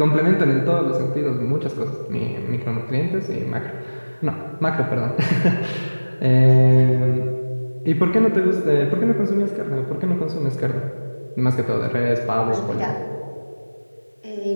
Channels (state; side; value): inverted; both; correlation -1.00